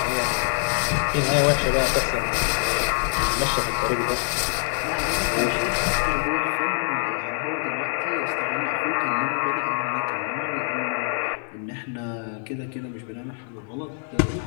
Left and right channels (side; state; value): right; silent; 62 dB below the other